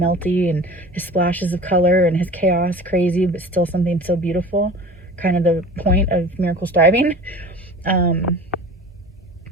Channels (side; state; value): both; normal; correlation 0.40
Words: melty, and his splashes of color and his chaos, crazy, but still something so beautiful. Kind of the point of miracle striving. That